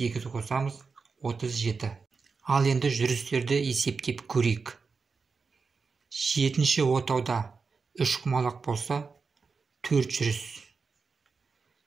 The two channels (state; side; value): quieter; left; 4.9 dB